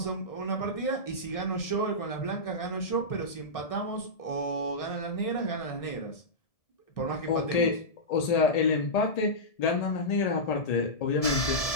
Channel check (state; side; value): late; right; 1.7 ms